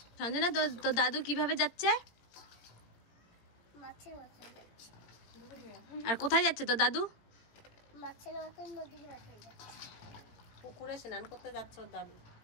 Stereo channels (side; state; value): right; late; 17 ms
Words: সঞ্জনা তো দাদু কিভাবে যাচ্ছে? মাছের মতন যাচ্ছে। আর কোথায় যাচ্ছে তো দাদু? মাছের মতন নদীর পাশে যাচ্ছে। পুকুরে স্নান করতে যাচ্ছে ওর দাদু,